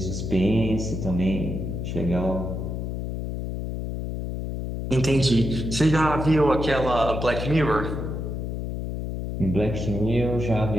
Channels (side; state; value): left; noise; hum, 4 dB below the sound